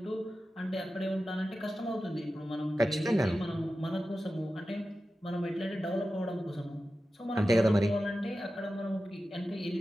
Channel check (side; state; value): both; normal; correlation 0.93